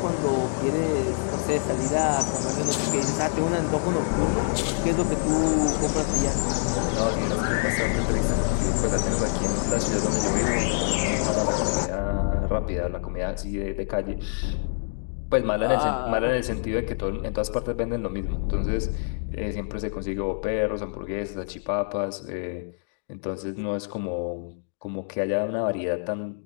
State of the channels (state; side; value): silent; right; digital silence